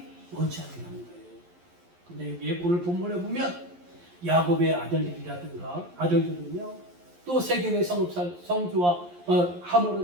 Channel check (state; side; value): late; left; 11 ms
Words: 원치 않는 거예요. 근데 여기 오늘 본문에 보면 야곱의 아들들은요 또 세겜의 성주와